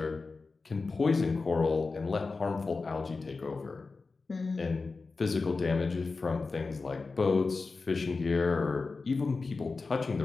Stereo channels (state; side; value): quieter; right; 4.1 dB